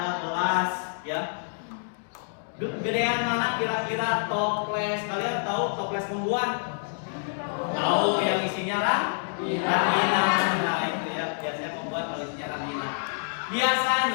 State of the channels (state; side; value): silent; right; digital silence